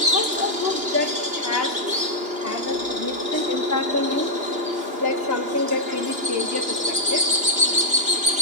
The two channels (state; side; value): late; left; 2.9 ms